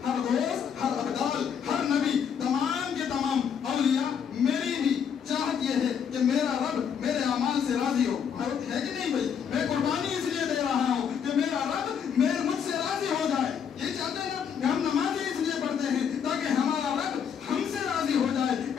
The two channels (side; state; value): right; quieter; 7.6 dB